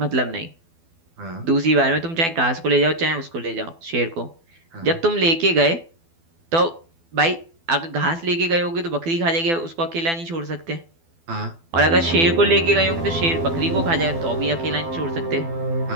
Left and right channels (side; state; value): left; late; 12 ms